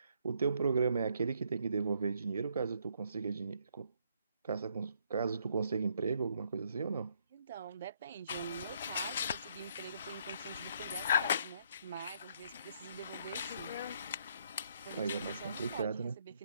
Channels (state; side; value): inverted; both; correlation -0.70